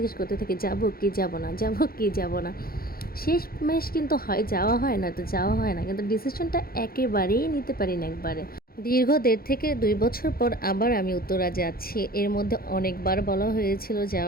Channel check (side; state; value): right; late; 0.43 ms